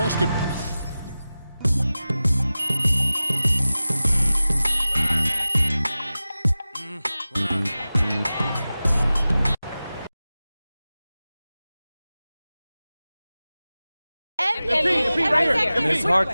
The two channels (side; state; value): both; inverted; correlation -0.96